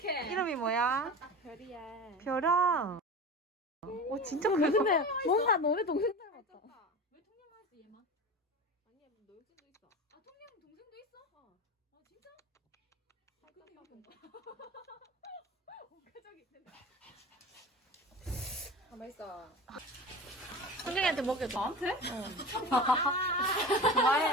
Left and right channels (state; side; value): normal; both; correlation 0.32